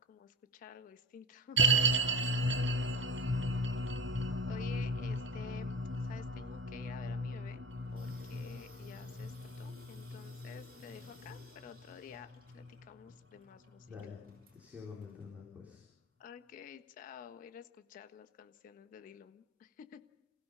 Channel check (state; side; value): normal; both; correlation 0.31